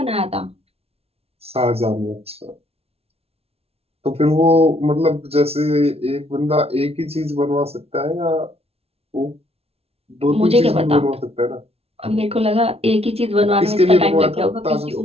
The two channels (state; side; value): late; left; 0.29 ms